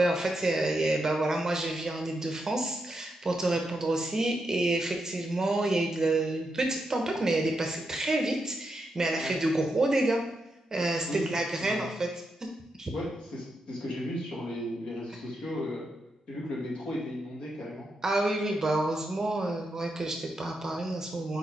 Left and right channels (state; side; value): normal; both; correlation 0.84